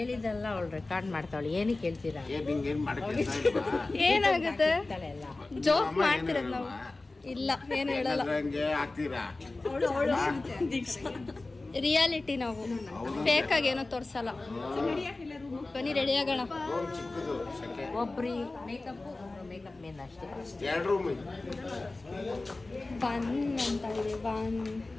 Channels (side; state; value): right; quieter; 3.2 dB